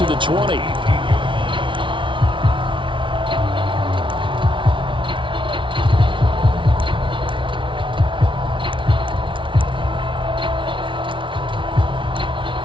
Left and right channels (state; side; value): late; left; 0.24 ms